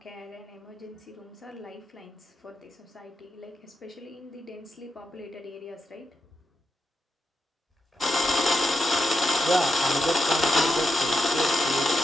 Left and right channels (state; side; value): normal; both; correlation 0.87